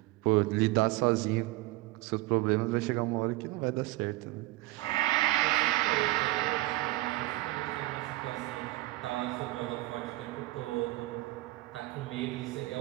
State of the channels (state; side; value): quieter; left; 19.5 dB